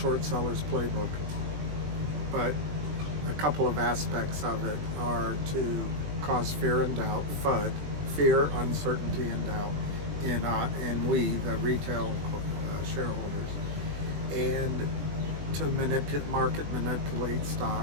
sellers playbook. But a couple of aspects of it are to cause fear and doubt, FUD, fear, uncertainty, and doubt in we, the retail shareholders, and to manipulate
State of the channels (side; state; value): left; late; 20 ms